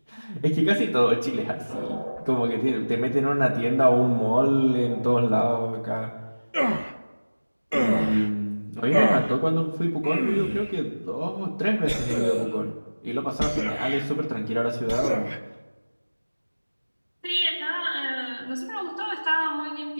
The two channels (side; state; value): both; inverted; correlation -1.00